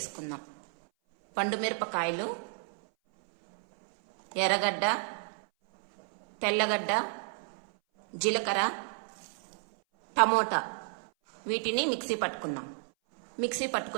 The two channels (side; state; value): left; silent; 57 dB below the other